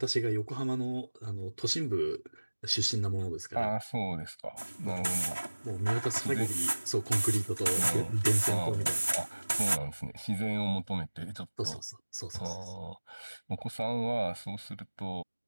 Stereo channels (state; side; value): inverted; both; correlation -1.00